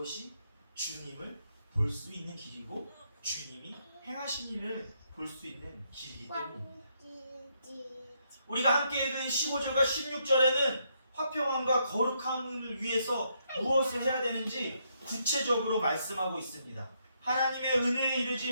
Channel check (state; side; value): inverted; both; correlation -0.76